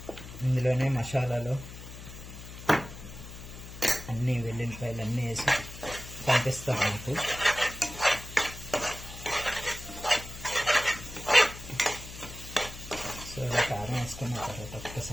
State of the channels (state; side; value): noise; left; hum, 13 dB below the sound